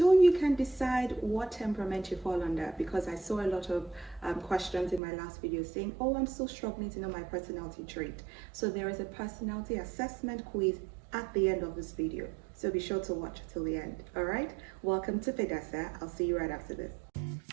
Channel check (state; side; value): drops out; left; at 5.0 s